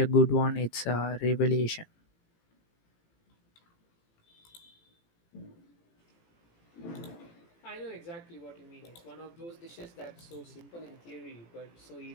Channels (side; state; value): right; late; 18 ms